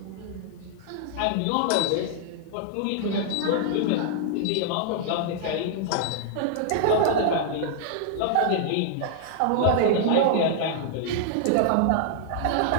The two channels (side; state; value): both; different; correlation -0.01